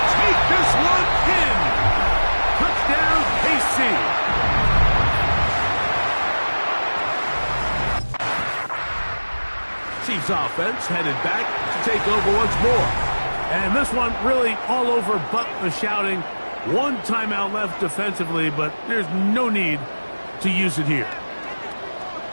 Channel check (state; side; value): inverted; both; correlation -1.00